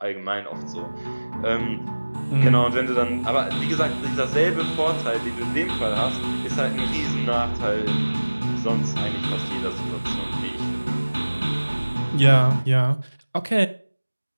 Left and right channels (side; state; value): both; inverted; correlation -1.00